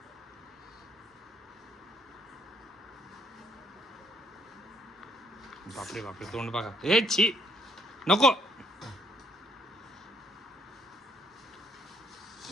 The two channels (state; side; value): normal; both; correlation 0.67